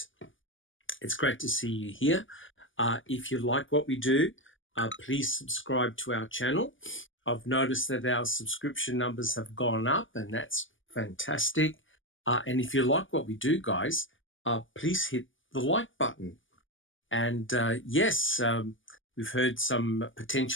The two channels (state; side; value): late; right; 0.57 ms